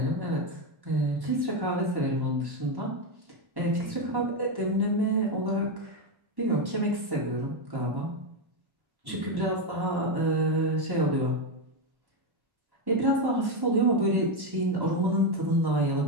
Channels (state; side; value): late; left; 1.1 ms